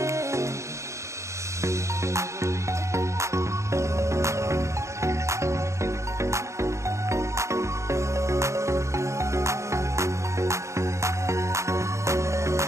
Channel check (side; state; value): left; late; 0.14 ms